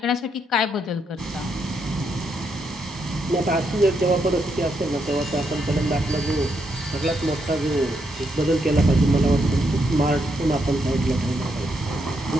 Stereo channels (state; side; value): normal; both; correlation 0.79